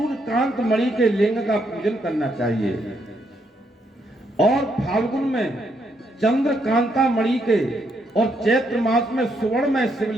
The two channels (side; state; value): both; normal; correlation 0.76